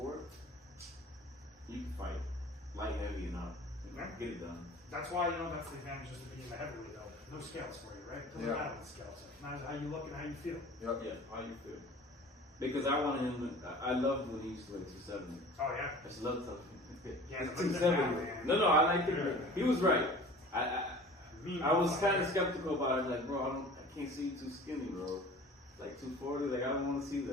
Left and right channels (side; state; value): both; normal; correlation 0.43